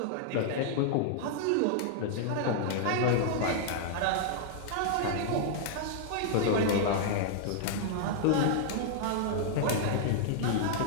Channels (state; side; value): different; both; correlation -0.01